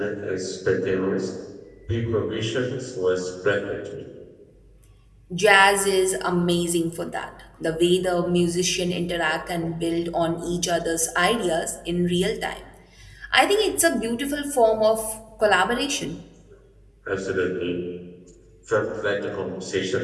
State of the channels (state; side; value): identical; both; correlation 1.00